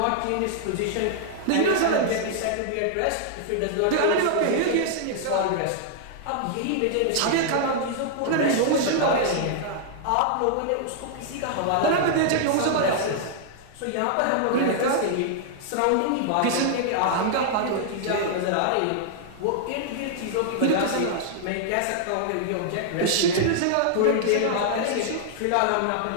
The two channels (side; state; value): both; different; correlation -0.01